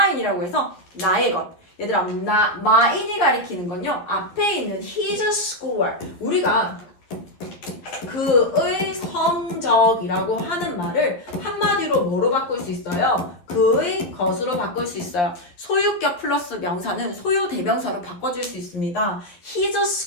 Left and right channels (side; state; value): right; late; 11 ms